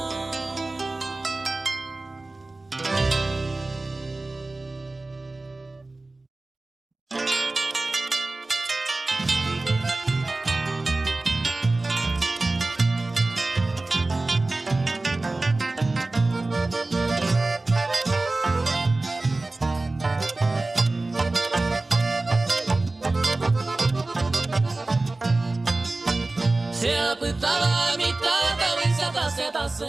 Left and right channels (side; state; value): left; quieter; 3.1 dB